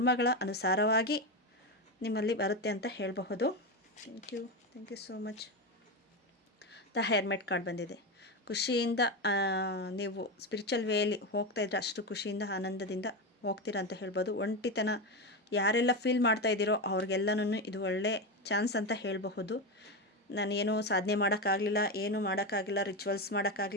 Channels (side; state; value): both; normal; correlation 0.15